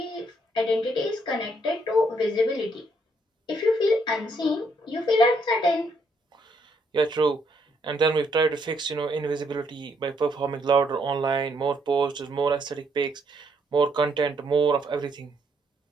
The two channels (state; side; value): normal; both; correlation 0.72